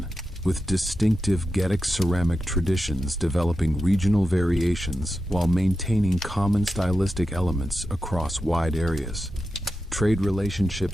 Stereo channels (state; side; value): normal; both; correlation 0.90